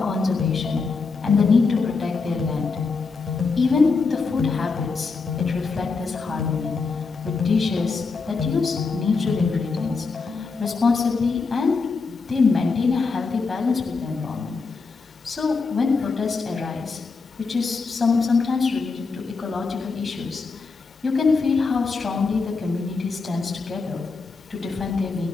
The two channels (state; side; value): quieter; right; 4.5 dB